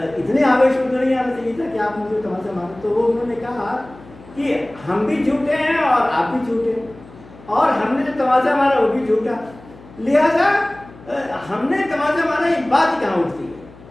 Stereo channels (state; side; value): noise; left; hum, 21 dB below the sound